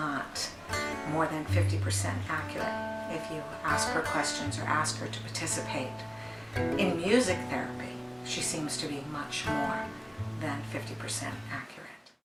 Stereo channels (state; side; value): identical; both; correlation 1.00